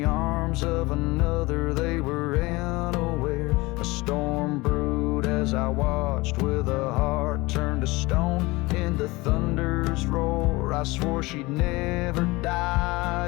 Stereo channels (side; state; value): right; quieter; 22.5 dB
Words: arms of another they were unaware. A storm brewed as I watched, with a heart turned to stone in the thunder's roar. I swore she'd never